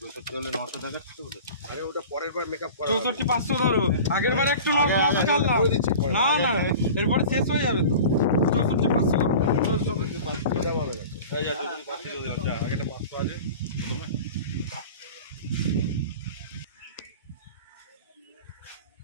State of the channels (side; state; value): both; inverted; correlation -0.38